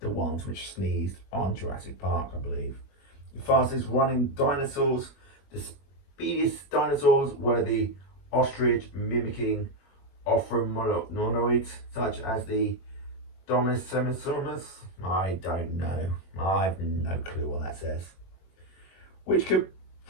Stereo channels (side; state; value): right; late; 21 ms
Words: ones which sneezed on Jurassic Park, I believe. The fastest running dinosaurs, the speediest dinosaurs were the ostrich, mimicking ophromenoids such as the Dromaeosaurus. I don't know. I have no clue what that says. Which could